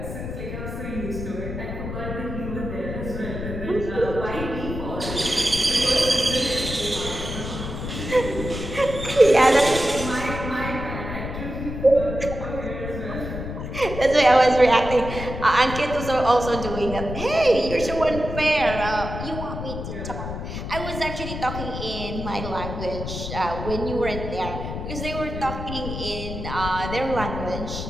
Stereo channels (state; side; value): noise; left; rumble, 6 dB below the sound